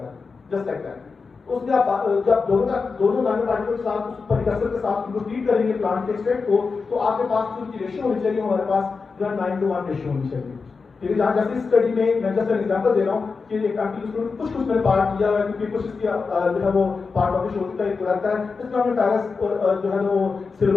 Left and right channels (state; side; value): quieter; right; 4.7 dB